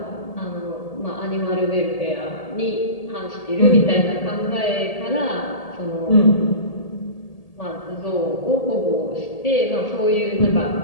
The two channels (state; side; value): late; right; 1.8 ms